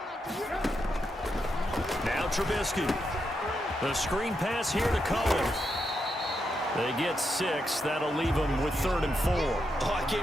Now Trubisky. The screen pass here to Cohen. They get 6. That'll leave them with 3rd and 4. Oh, I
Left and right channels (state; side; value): normal; both; correlation 0.83